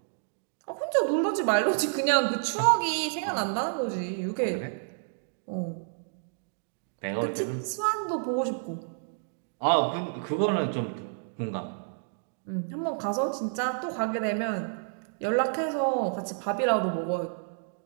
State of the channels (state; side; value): silent; left; digital silence